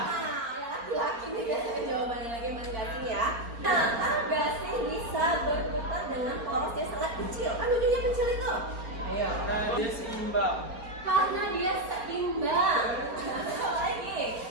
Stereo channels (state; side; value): late; left; 4.2 ms